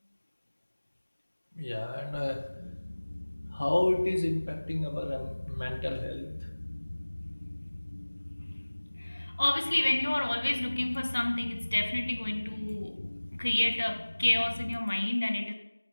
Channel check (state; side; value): inverted; both; correlation -1.00